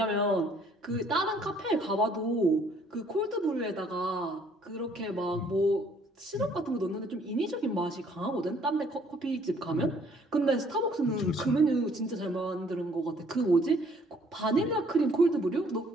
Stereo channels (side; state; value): both; normal; correlation 0.62